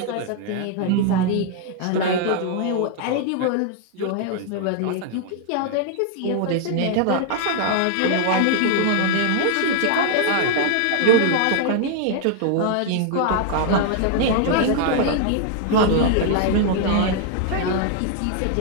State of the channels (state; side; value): different; both; correlation 0.00